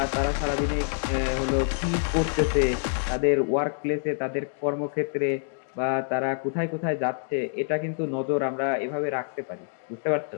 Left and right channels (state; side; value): silent; right; digital silence